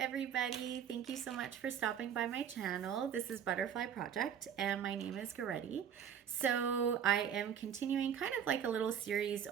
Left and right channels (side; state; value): left; quieter; 8.5 dB